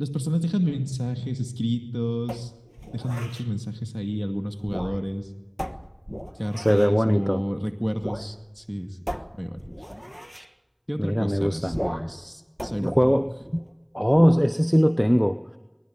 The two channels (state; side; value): identical; both; correlation 1.00